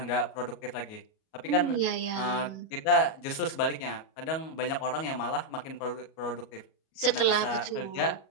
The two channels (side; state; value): right; late; 37 ms